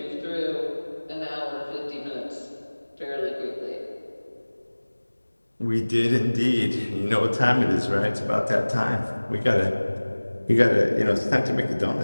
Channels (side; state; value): both; inverted; correlation -1.00